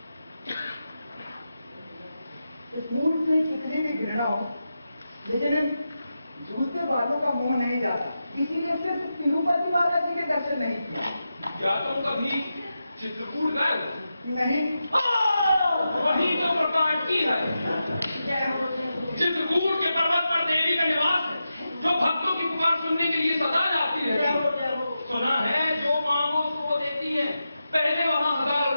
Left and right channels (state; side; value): inverted; both; correlation -0.90